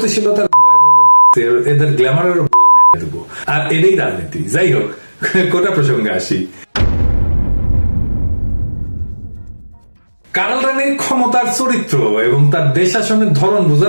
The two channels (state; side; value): inverted; both; correlation -1.00